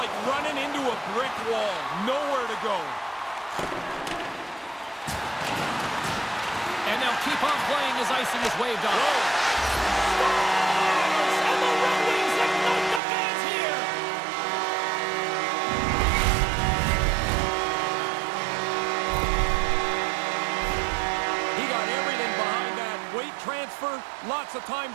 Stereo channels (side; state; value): left; drops out; at 13.0 s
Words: running into a brick wall. Nowhere to go. And they'll keep on playing as icing is waved off. Scores! And the Red Wings ignite the fans here. He got everything behind that. Weight transfer, lots of time